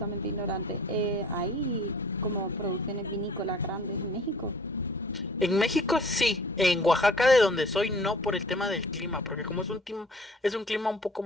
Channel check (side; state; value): both; normal; correlation 0.50